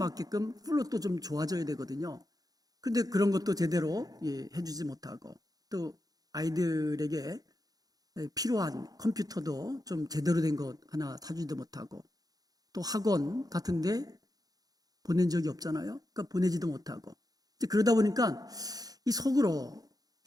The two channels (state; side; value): late; left; 0.18 ms